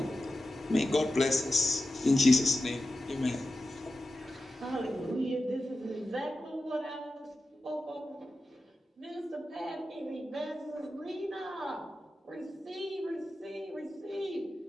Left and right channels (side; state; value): both; normal; correlation 0.92